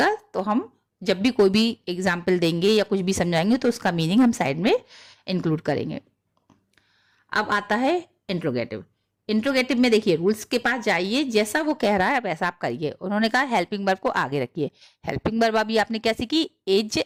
तो हम जब भी कोई भी एग्जाम्पल देंगे या कुछ भी समझाएंगे तो उसका मीनिंग हम साइड में इंक्लूड करेंगे। अब आता है इंट्रोगेटिव। इंट्रोगेटिव में देखिए रूल्स के पास जाइए, जैसा वो कह रहा है वैसा आप करिए। उन्होंने कहा हेल्पिंग वर्ब को आगे रखिए। हेल्पिंग वर्ब अभी आपने क्या सीखी? Is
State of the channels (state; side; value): identical; both; correlation 1.00